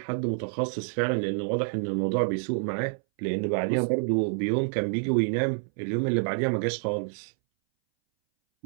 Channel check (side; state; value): left; silent; 60 dB below the other